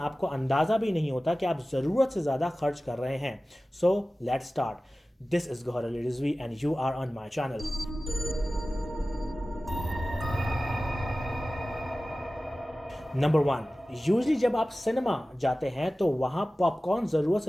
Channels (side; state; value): both; normal; correlation 0.96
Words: अंदाज़ा भी नहीं होता कि आप ज़रूरत से ज़्यादा खर्च कर रहे हैं। So let's start. This is Gauhar Ali Rizvi and you are on my channel. Number 1, usually जब आप सिनेमा जाते हैं तो वहाँ पॉपकॉर्न ज़रूरत